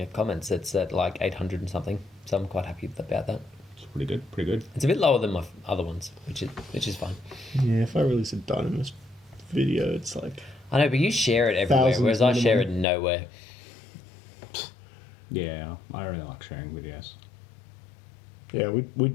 comments. It's at like 800 and something, so I'm quite happy about that. It's pretty good. Pretty good. It's a bit lower than my other ones, which is fine. yeah, if I release a Dynamis video, it's like, I know, but you share it everywhere, Thousands whereas I share it minimum. nowhere. Yeah, I really like sharing videos. yeah, we'd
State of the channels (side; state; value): right; drops out; at 12.9 s